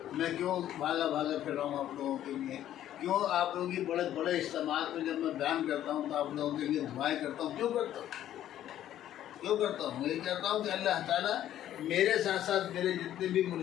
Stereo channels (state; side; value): quieter; right; 11.9 dB